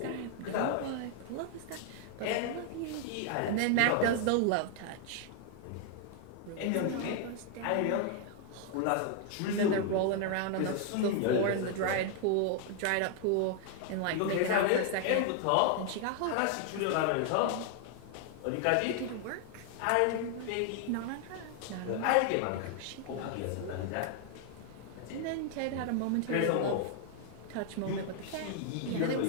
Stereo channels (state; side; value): different; both; correlation 0.00